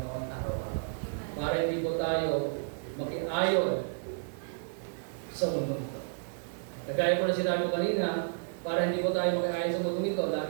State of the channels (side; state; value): left; silent; digital silence